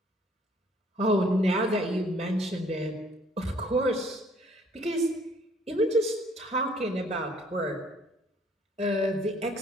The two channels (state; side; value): normal; both; correlation 0.60